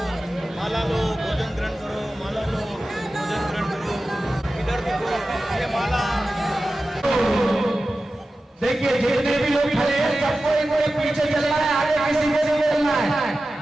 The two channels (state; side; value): normal; both; correlation 0.94